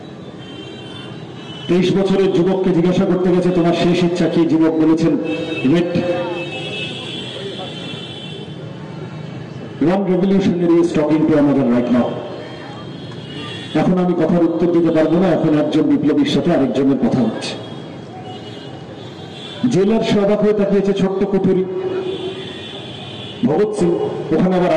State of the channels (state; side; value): identical; both; correlation 1.00